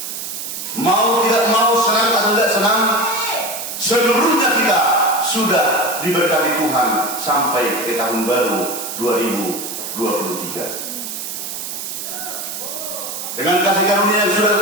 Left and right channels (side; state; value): right; noise; hiss, 7 dB below the sound